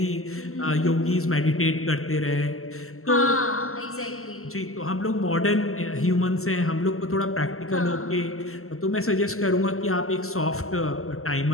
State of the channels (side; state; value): right; late; 0.63 ms